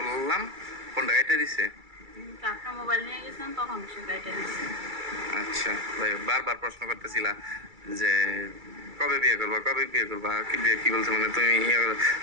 ফোনটা কেটে দিছে। আপনার মোবাইল নিয়ে গেছেন তখন সে গাড়িটা দিচ্ছে। আচ্ছা, ভাই বারবার প্রশ্ন করতেছিলা যে কবে বিয়ে করবা, কবে বিয়ে করবা, কি বিয়ে কি বলছে, মানে তুমি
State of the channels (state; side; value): late; left; 2.3 ms